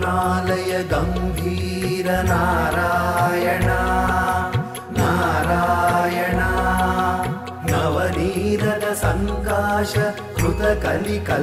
గంభీర నారాయణ నారాయణ నవనీరద సంకాశ కృత కలి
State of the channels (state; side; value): identical; both; correlation 1.00